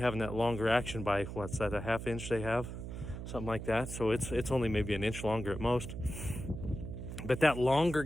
having that longer action by, what's that, a half inch they have? Something like that. So it's only maybe an inch longer at most. But that longer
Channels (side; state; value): right; noise; hum, 8 dB below the sound